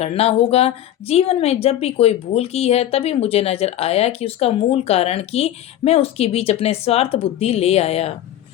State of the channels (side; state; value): right; quieter; 12.2 dB